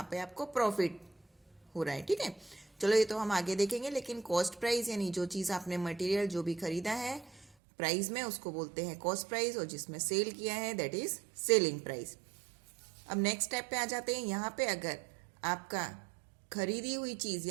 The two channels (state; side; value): drops out; left; at 7.5 s